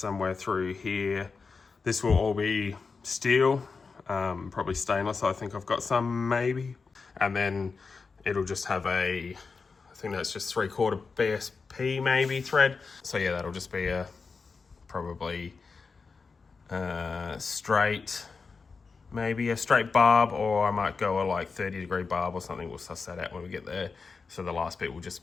through here. This will all be steel, probably stainless. I think I've got some, maybe. And then it'll just have I think that's just 3/4 BSP maybe thread. So yeah, that'll just be a probably straight, maybe a straight barb, or I might go a like 30-degree barb or something. We'll suss that out when we get there. So the last bit will just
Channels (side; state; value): right; quieter; 4.8 dB